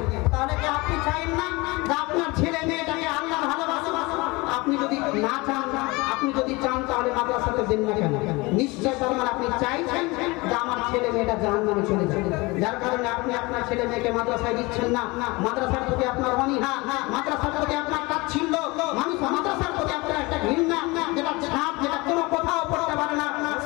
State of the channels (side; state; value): right; quieter; 24.0 dB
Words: তাহলে কি আপনি চাইেন না যে আপনার ছেলে মেয়েটাকে আল্লাহ ভালোবাসে? আপনি যদি না চান, আপনি যদি চান তাহলে মাদ্রাসাতে দেন না কেন? নিশ্চয় তার মানে আপনি চাইছেন যে আমার ছেলে মেয়েটা জাহান্নামে চলে যাবে, যার কারণে আপনি আপনার ছেলে মেয়েকে মাদ্রাসায় দিচ্ছেন না। মাদ্রাসার প্রতি আপনার অনীহা, মাদ্রাসার প্রতি আপনার তাচ্ছিল্য, মাদ্রাসার প্রতি আপনার একটা ঘৃণা, যেটা ছাপ, যেটা কোনো কোথাও পড়তে পারে না,